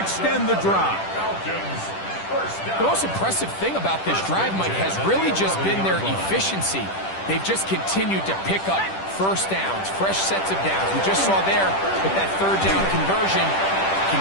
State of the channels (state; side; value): late; right; 10 ms